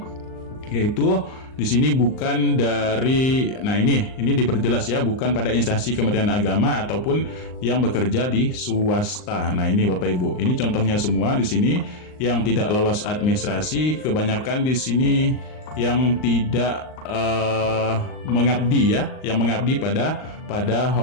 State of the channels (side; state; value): right; late; 39 ms